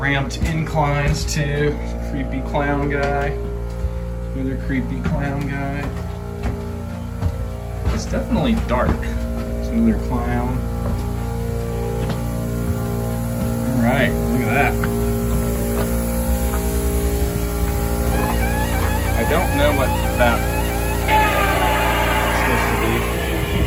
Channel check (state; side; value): identical; both; correlation 1.00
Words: inclines too. Creepy clown guy. Another creepy clown guy. It's definitely dark. There's another clown. Alright, look at that. I don't know what that is supposed to be.